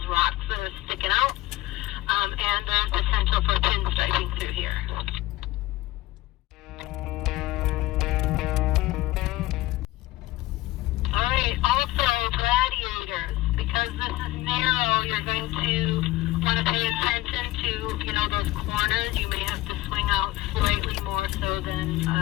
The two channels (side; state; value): right; quieter; 17.9 dB